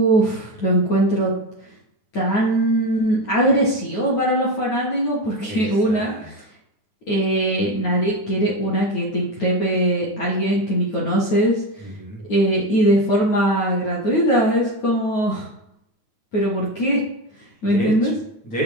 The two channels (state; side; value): late; right; 9.3 ms